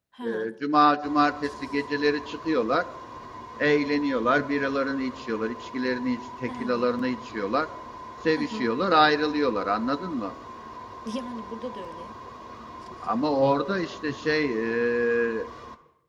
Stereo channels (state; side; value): identical; both; correlation 1.00